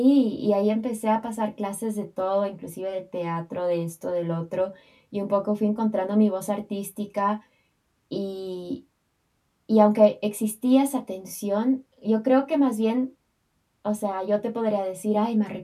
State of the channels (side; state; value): both; identical; correlation 1.00